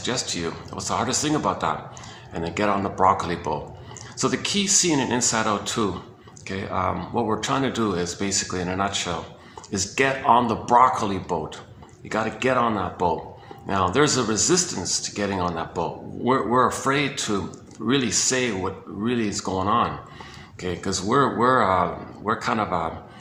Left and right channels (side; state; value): both; identical; correlation 1.00